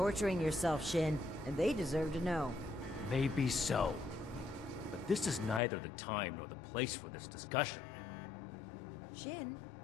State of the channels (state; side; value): drops out; right; at 5.6 s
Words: yourself, Shin, and they deserve to know. Maybe so. But this is neither the time nor the place for this discussion. Shin,